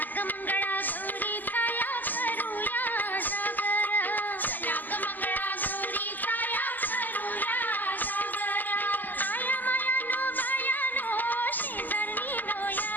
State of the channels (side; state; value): right; late; 0.086 ms